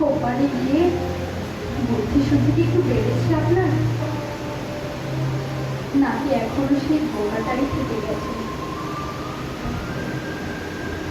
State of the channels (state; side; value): identical; both; correlation 1.00